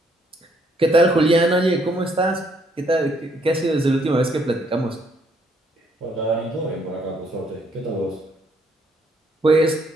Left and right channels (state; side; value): normal; both; correlation 0.69